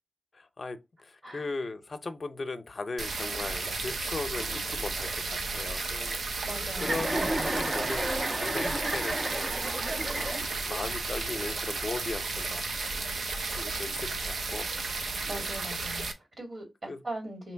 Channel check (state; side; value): normal; both; correlation 0.89